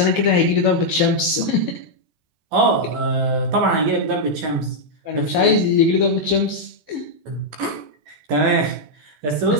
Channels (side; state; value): left; late; 13 ms